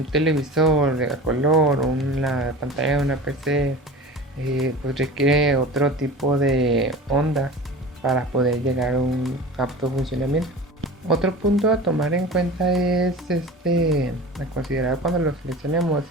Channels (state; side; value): normal; both; correlation 0.36